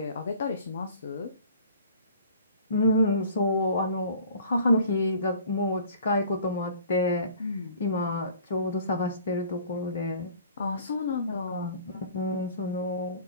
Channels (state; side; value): inverted; both; correlation -0.49